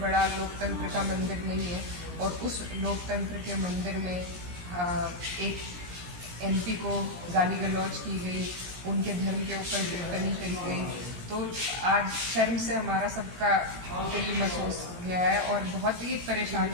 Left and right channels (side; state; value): left; late; 17 ms